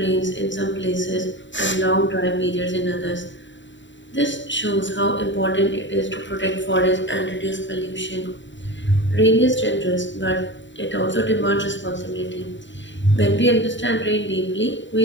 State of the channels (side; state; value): right; late; 0.54 ms